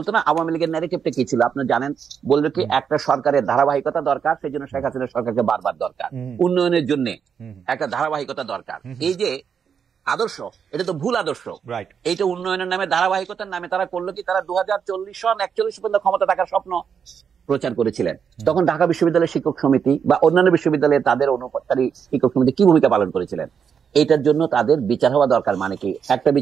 না আওয়ামী লীগের ন্যারেটিভটা কি ছিল? আপনি জানেন, বলবে কি একটা সরকারের ধারাবাহিকতা দরকার, সেই জন্য শেখ হাসিনার সরকারকে বারবার দরকার, উন্নয়নের জন্য একটা ধারাবাহিকতা দরকার। এই যে আদর্শ, এটা তো ভুল আদর্শ। এইটা উন্নয়নের নামে, ধারাবাহিকতার নামে তারা করলো কি, তারা 2040 সন 41 পর্যন্ত ক্ষমতা থাকার স্বপ্ন প্রচার করেছিলেন। তখন ঢাকা বিশ্ববিদ্যালয়ের শিক্ষক সমিতি বা অন্যান্য বিশ্ববিদ্যালয়ে তাদের অনুপাতকারী শিক্ষক সমিতি কি ভূমিকা পালন করেছিলেন? এটার জন্য তাদের বিচার হওয়া দরকার। মানে কি? একটা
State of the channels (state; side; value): quieter; left; 7.1 dB